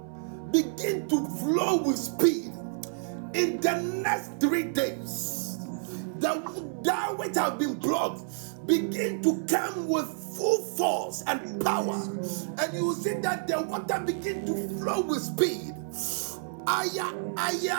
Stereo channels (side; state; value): left; silent; digital silence